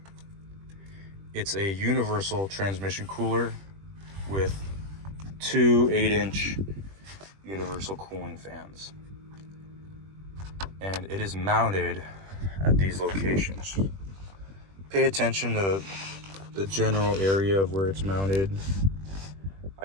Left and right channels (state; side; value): late; left; 21 ms